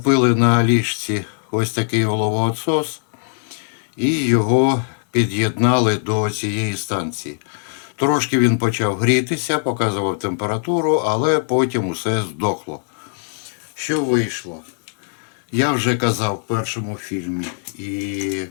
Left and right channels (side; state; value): right; silent; digital silence